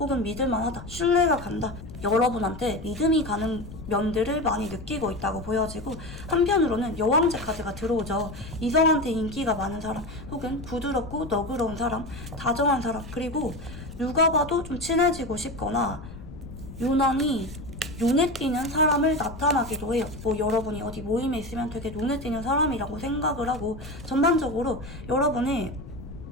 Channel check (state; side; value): noise; left; rumble, 13 dB below the sound